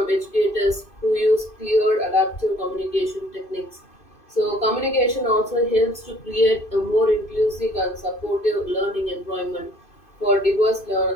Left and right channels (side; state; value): right; late; 2.5 ms